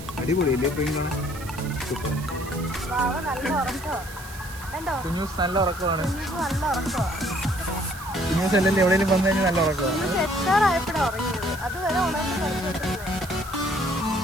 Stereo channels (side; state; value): right; noise; hiss, 15 dB below the sound